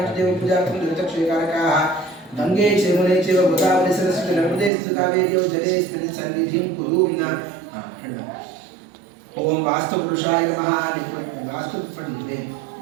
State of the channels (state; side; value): drops out; left; at 4.7 s